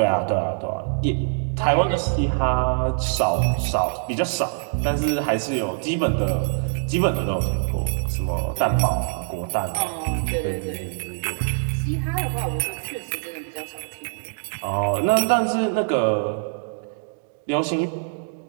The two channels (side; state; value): left; silent; 63 dB below the other